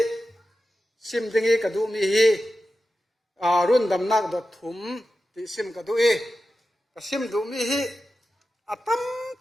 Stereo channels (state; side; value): normal; both; correlation 0.92